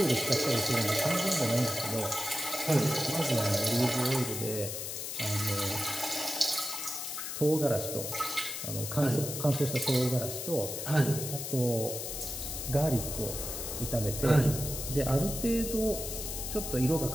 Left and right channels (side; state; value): left; noise; hiss, 5 dB below the sound